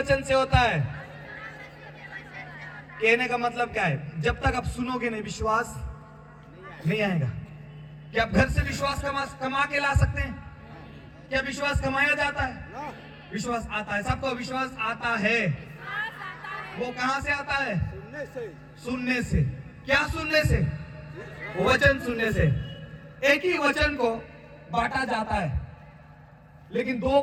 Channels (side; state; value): both; identical; correlation 1.00